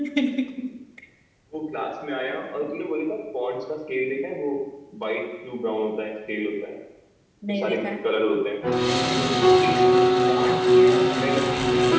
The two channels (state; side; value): identical; both; correlation 1.00